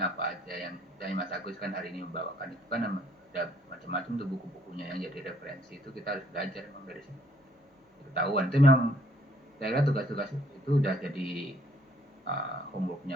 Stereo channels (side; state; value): both; normal; correlation 0.65